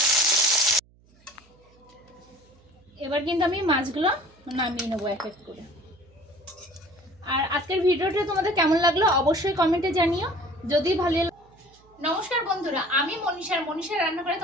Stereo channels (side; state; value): right; noise; hum, 30 dB below the sound